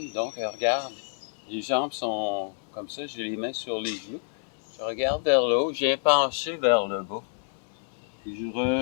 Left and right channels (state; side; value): silent; right; 58 dB below the other